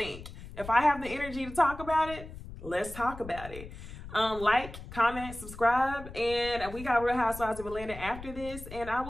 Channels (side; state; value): left; noise; rumble, 13 dB below the sound